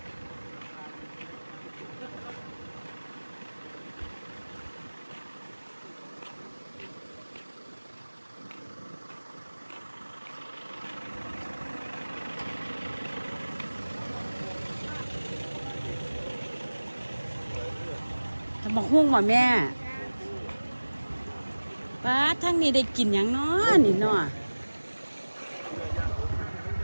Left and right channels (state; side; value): inverted; both; correlation -1.00